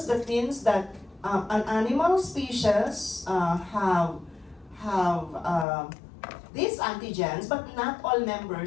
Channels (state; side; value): drops out; right; at 5.7 s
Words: that means that an animal species have these antigens, but not all